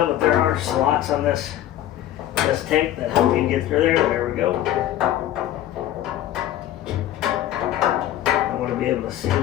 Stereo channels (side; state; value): right; quieter; 12.6 dB